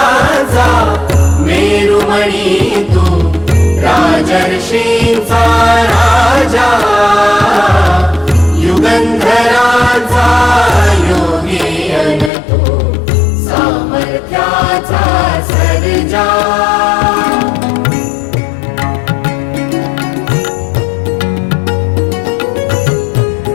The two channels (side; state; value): right; drops out; at 12.3 s